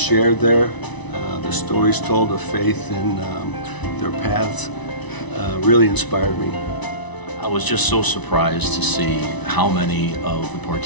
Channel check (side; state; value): right; late; 1.0 ms